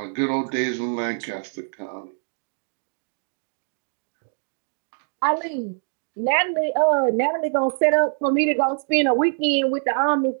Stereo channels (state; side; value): silent; left; digital silence